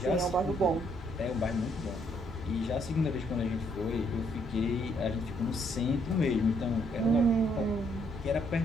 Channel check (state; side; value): normal; both; correlation 0.70